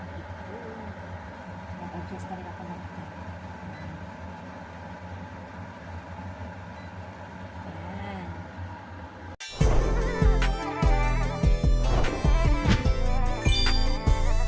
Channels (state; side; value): identical; both; correlation 1.00